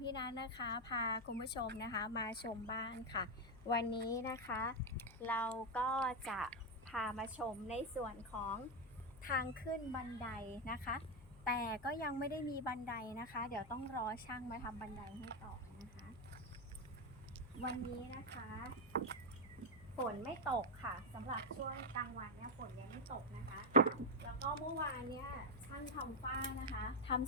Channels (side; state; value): left; noise; hum, 19 dB below the sound